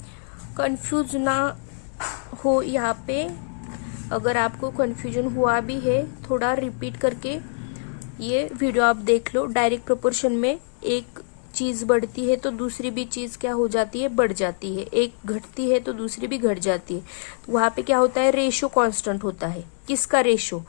कंफ्यूज ना हो यहाँ पे, अगर आपको कंफ्यूजन हुआ भी है थोड़ा रिपीट करके ये वीडियो आप देख लो। डायरेक्ट प्रोपोर्शन में एक चीज बढ़ती है तो दूसरी भी चीज क्या हो जाती है, बढ़ जाती है, एक घटती है तो दूसरी भी घट जाती है। वहां पे क्या होता है, रेशो कांस्टेंट होता है। किसका रेशो,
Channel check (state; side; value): silent; right; digital silence